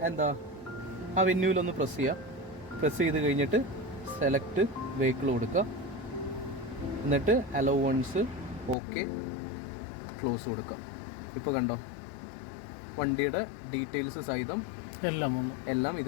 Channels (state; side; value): drops out; right; at 8.8 s